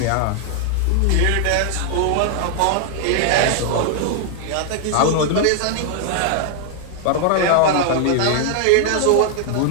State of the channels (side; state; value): both; different; correlation 0.00